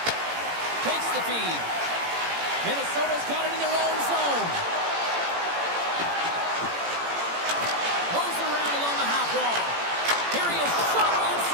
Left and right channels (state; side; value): late; left; 18 ms